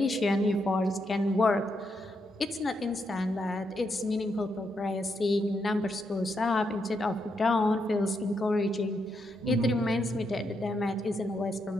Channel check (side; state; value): both; normal; correlation 0.81